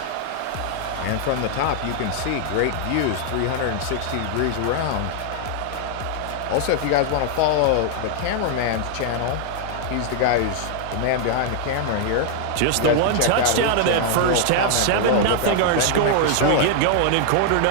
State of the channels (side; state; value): both; different; correlation 0.00